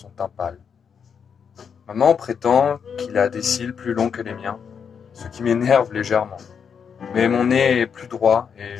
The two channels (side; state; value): right; quieter; 6.9 dB